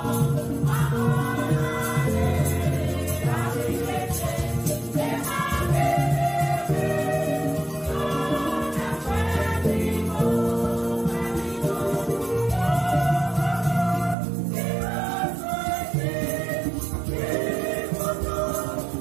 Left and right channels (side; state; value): left; drops out; at 14.2 s